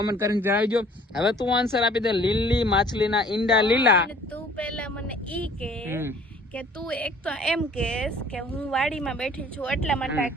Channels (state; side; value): normal; both; correlation 0.54